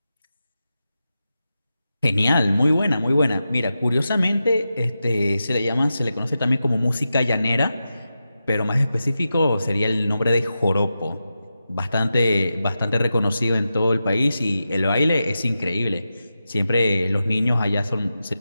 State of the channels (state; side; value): inverted; both; correlation -0.91